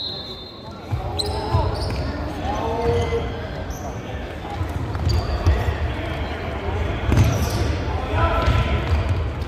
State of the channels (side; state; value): both; identical; correlation 1.00